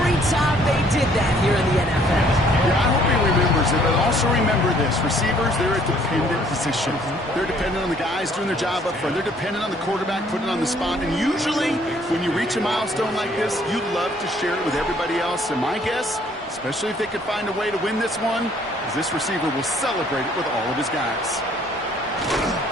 time they did that here in the NFL. Yeah, I hope he remembers it, but also remember this. Receivers, they're a dependent position. They're dependent on the guys doing their job up front. They're dependent on the quarterback putting it on the spot. And usually, when you reach a milestone like this, you love to share it with everybody else. And my guess, especially if they could find a way to win this one, is this receiver will celebrate it with all of his guys.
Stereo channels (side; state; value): both; normal; correlation 0.61